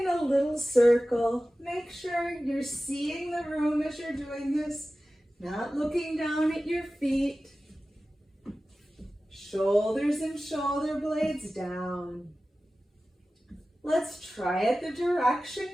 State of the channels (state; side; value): normal; both; correlation 0.96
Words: a little circle. Make sure you're seeing the room as you're doing this, not looking down at your feet. Shoulders and shoulder blades down. Let's try it the direction